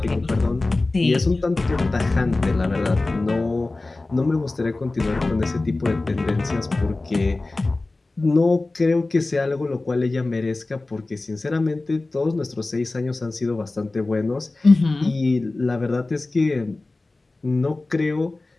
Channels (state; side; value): quieter; right; 3.2 dB